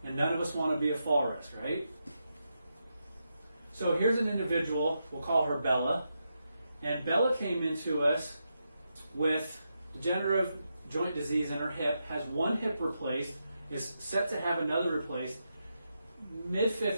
and none of us want to be a fall risk, right? So here's an individual, we'll call her Bella, and Bella came into us with degenerative joint disease in her hip, has one hip replaced, is set to have another replaced,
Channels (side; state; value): both; inverted; correlation -0.85